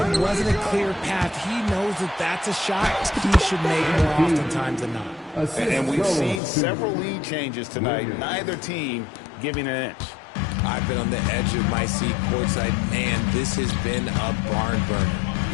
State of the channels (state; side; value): drops out; right; at 6.4 s